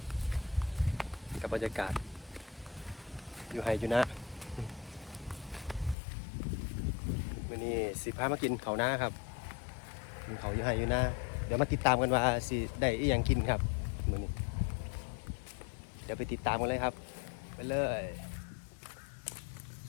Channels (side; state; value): right; drops out; at 6.0 s